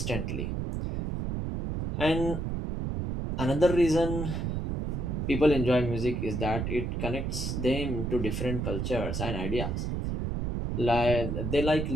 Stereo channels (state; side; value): noise; right; rumble, 2 dB below the sound